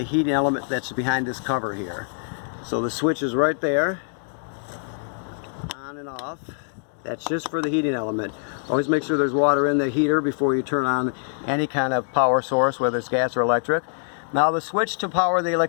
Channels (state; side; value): silent; right; 63 dB below the other